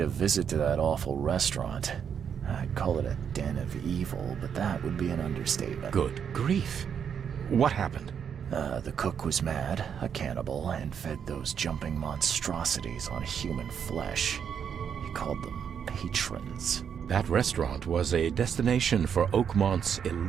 visit to that awful restaurant. I'd call it a den of evil, but that would be an understatement. Good grief. What happened? The cook was mad, a cannibal, and fed those jumping monstrosities on human flesh. He called them patrons. That restaurant was a destination for Oakmont's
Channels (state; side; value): quieter; left; 7.7 dB